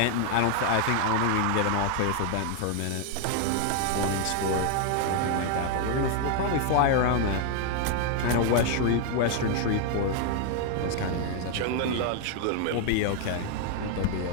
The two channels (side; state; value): both; different; correlation 0.00